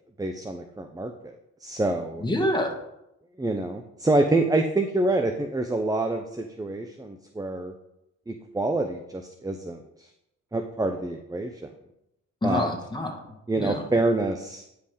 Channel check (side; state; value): both; normal; correlation 0.68